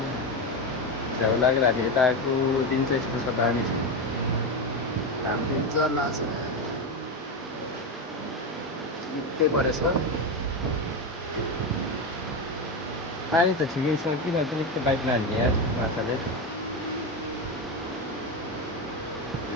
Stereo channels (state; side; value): normal; both; correlation 0.14